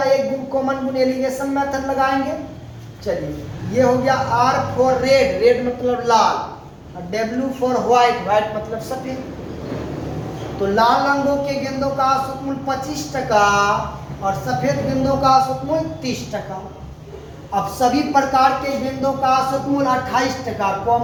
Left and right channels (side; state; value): both; identical; correlation 1.00